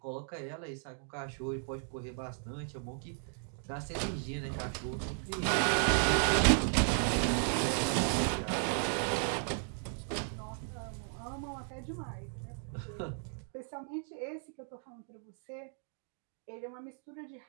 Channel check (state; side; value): silent; left; 54 dB below the other